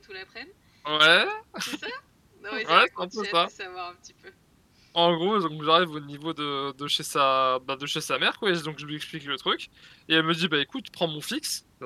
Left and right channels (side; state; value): both; identical; correlation 1.00